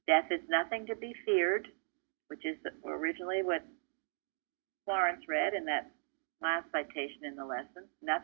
Death is nothing to be feared, which is originally what Florence read in that last citation in the lesson.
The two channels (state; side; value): silent; left; digital silence